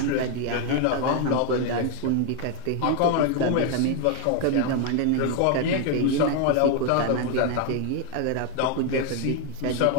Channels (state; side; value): different; both; correlation 0.01